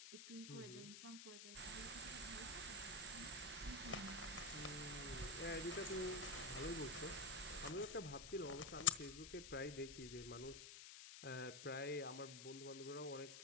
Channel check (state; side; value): noise; left; hiss, 10 dB below the sound